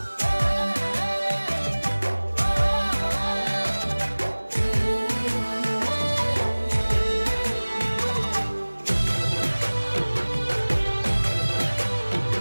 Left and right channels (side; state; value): both; inverted; correlation -1.00